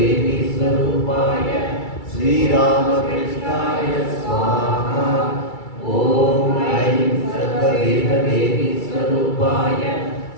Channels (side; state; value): right; late; 2.3 ms